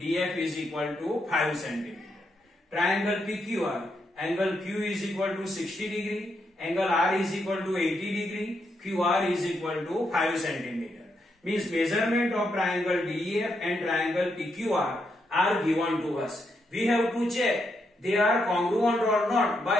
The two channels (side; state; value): both; normal; correlation 0.80